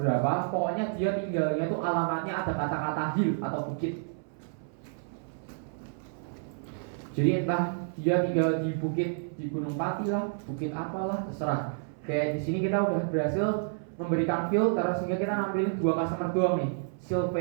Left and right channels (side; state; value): left; silent; 57 dB below the other